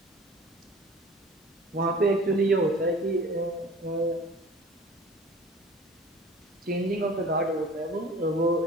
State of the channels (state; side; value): normal; both; correlation 0.44